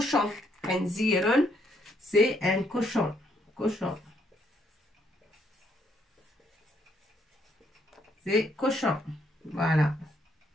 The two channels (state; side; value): normal; both; correlation 0.72